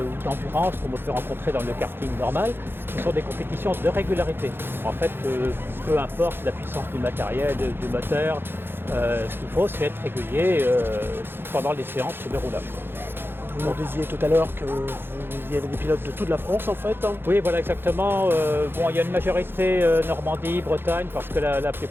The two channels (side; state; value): left; late; 0.10 ms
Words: d'endurance comme on peut rencontrer dans le karting normal, ce sont des compétitions de régularité. En fait, peu importe la puissance du matériel, du moteur, ce qu'il faut c'est être régulier pendant les séances de roulage. Vous nous disiez tout à l'heure que vous y avez des pilotes de toute la France en fait. Oui, voilà exactement. Il y a une majorité Normandie, Bretagne, parce que la